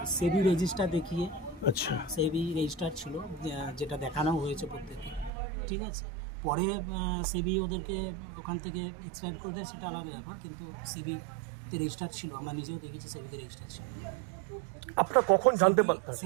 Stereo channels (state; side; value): drops out; left; at 5.3 s